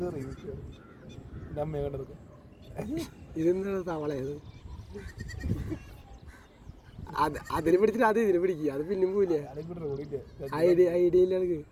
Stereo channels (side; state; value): both; identical; correlation 1.00